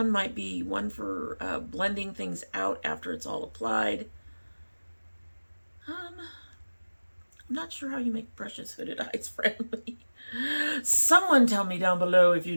might be one for blending things out after it's all applied. I'm not sure how you make brushes hooded eyes friendly. Someone tell me down below if you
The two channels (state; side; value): inverted; both; correlation -1.00